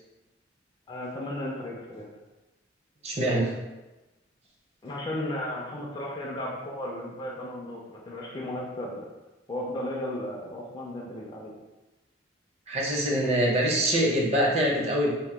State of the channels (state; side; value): normal; both; correlation 0.39